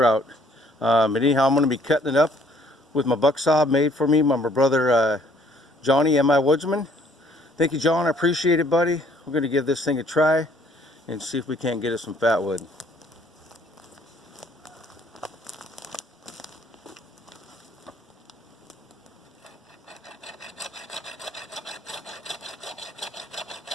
out. But anyhow, I'm going to be cutting it up with my buck saw made for me by my brother Johnny, M.I. Woodsman. Thank you, John. I appreciate it, buddy. We're going to give this thing a try and see if we can't get us some fatwood.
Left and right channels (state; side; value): normal; both; correlation 0.62